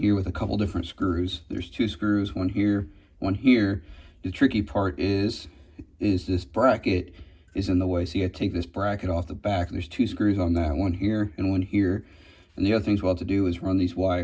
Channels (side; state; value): both; identical; correlation 1.00